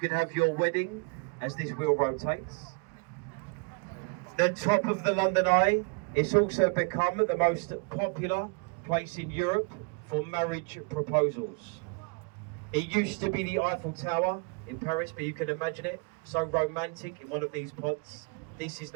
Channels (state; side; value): quieter; left; 33.2 dB